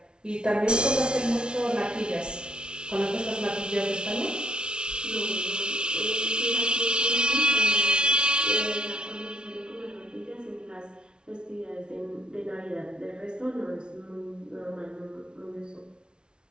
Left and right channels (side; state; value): left; late; 0.056 ms